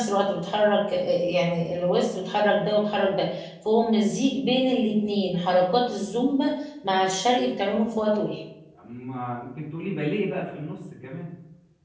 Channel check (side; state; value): both; identical; correlation 1.00